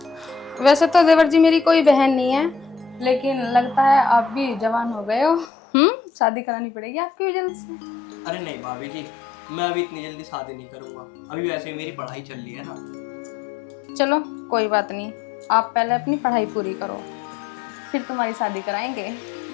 वैसे तो देवर जी मेरी कोई बहन नहीं है, लेकिन लगता है आप भी जवान हो गए हो। शादी करानी पड़ेगी आपकी भी जल्द से। अरे नहीं भाभी जी, मैं अभी इतनी जल्दी शादी नहीं करूंगा। अभी वैसे ही मेरी पढ़ाई चल रही है ना। चलो कोई बात नहीं, आप पहले अपनी पढ़ाई पूरी करो, फिर तुम्हारी शादी कराएंगे।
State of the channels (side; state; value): right; drops out; at 5.5 s